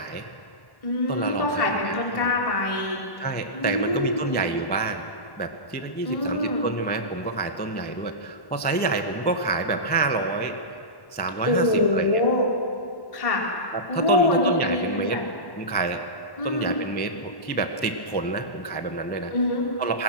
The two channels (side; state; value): right; late; 1.1 ms